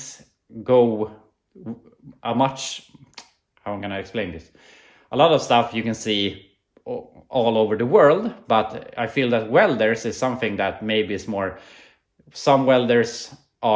go a much, how am I going to explain this? A lot of stuff you can see all over the world, but I feel that welders is something that maybe is more, some welders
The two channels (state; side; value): identical; both; correlation 1.00